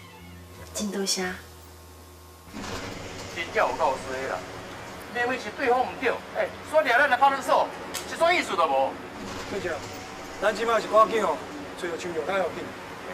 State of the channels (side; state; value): both; identical; correlation 1.00